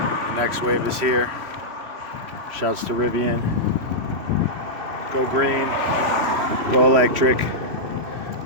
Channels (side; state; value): left; late; 3.1 ms